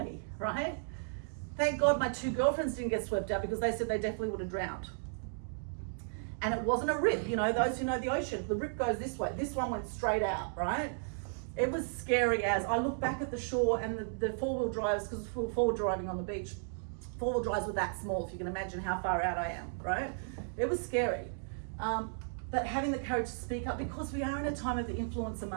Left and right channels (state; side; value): silent; left; digital silence